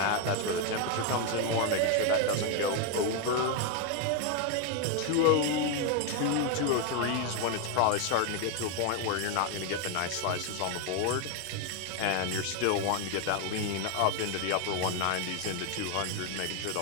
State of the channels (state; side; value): different; both; correlation 0.01